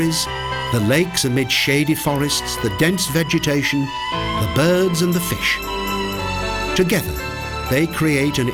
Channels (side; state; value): both; identical; correlation 1.00